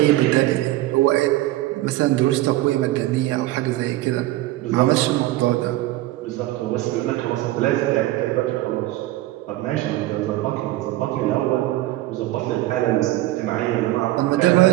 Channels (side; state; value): left; quieter; 16.5 dB